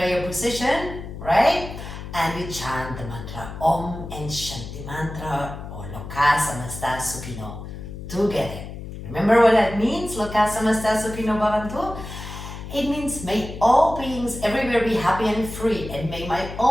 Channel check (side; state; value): left; noise; hum, 10 dB below the sound